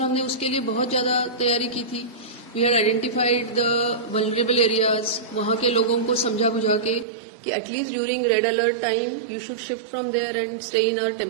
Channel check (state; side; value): drops out; left; at 7.1 s